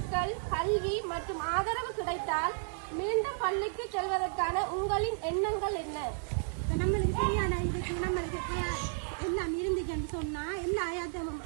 கல்வி மற்றும் ஆதரவு கிடைத்தால் மீண்டும் பள்ளிக்கு செல்வதற்கான உங்களின் எண்ணங்கள் என்ன? நம்மளுக்கு சரியான இதுக்கு நம்மளுக்கு எல்லாம் இருந்துச்சுன்னு சொன்னா எல்லா ஆயாச்சமும்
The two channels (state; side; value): silent; left; 56 dB below the other